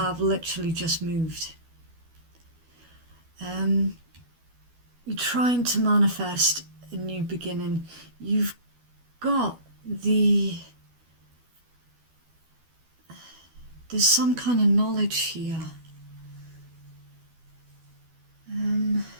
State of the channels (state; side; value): late; left; 12 ms